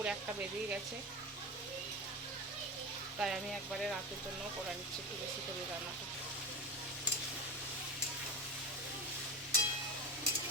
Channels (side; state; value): both; normal; correlation 0.23